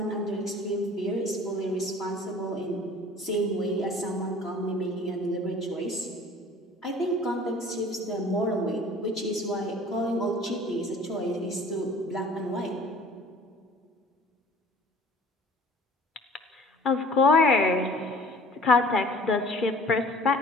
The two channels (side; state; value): both; normal; correlation 0.48